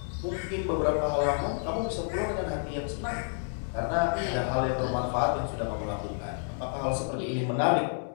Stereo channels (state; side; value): silent; right; digital silence